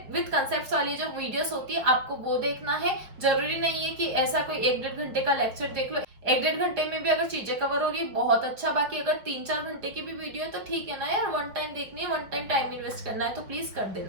विद कंसेप्ट वाली जो वीडियोस होती है आपको वो देखना है। जरूरी नहीं है कि ऐसा कोई 1-1.5 घंटे का लेक्चर देख लो, 1-1.5 घंटे में भी अगर चीजें कवर हो रही है बहुत अच्छा, बाकी अगर 3-4 घंटे की भी वीडियो है तो ठीक है ना यार, वन टाइम देखनी है, वन टाइम इन्वेस्ट करना है तो प्लीज कर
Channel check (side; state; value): left; late; 4.7 ms